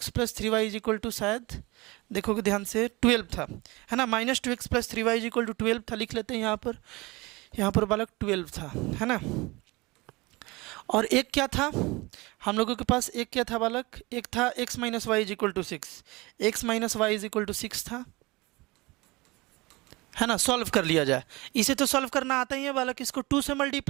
plus 3y is equal to, शायद देखोगे ध्यान से 12 था, है ना, minus 2x plus 3y is equal to 12 था, लिख लेते हैं यहाँ पर बालक 12 था, है ना। और एक क्या था हम लोगों के पास, एक क्या था बालक, एक था x minus y is equal to 6, x minus y is equal to 6 था, है ना। सॉल्व कर लिया जाए, इसे तो सॉल्व करना आता ही है बालक। इसको 2 से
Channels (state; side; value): quieter; left; 23.4 dB